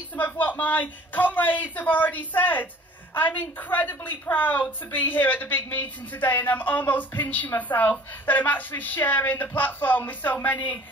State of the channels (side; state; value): both; normal; correlation 0.50